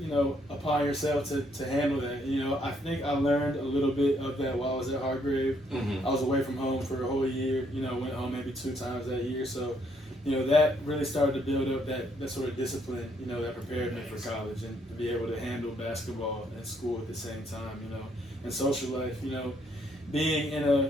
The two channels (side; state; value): both; normal; correlation 0.71